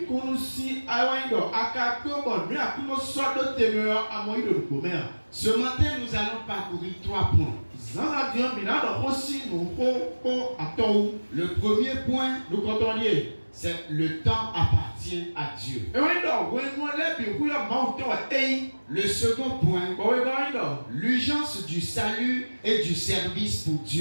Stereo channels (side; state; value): both; inverted; correlation -1.00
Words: Ce matin, nous allons parcourir 3 points. Le premier point, c'est le temps appartient à Dieu. Le second point, l'urgence du salut et du service pour